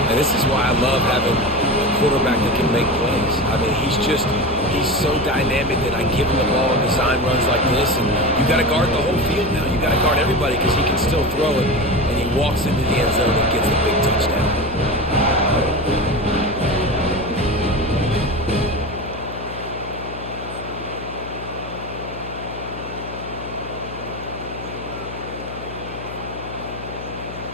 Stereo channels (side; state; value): left; noise; hum, 12 dB below the sound